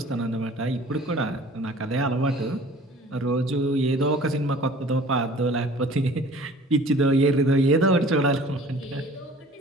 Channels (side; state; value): both; normal; correlation 0.47